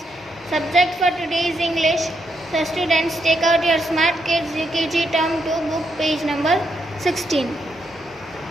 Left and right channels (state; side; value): normal; both; correlation 0.79